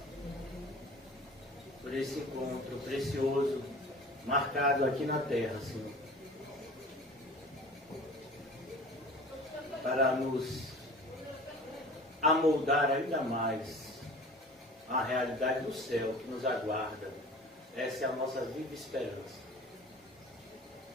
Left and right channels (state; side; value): normal; both; correlation 0.42